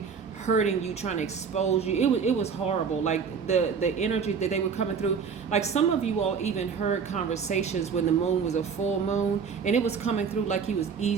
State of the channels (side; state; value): left; quieter; 6.2 dB